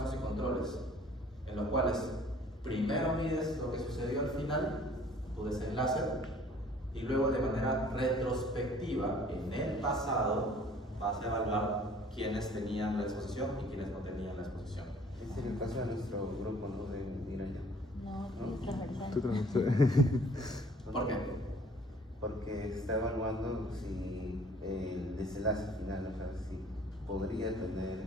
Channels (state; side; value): normal; both; correlation 0.54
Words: y controles, en los cuales primero mides lo que sucedió al final, tu desenlace, y luego de manera retrospectiva, en el pasado, vas a evaluar quiénes tenían la exposición y quiénes no tenían la exposición. Ese es el caso de nuestro grupo, ¿no? De migraña. No, sí, transversal. Tú también. ¿Por qué? Porque está evaluando si el desenlace final, o sea, si podría tener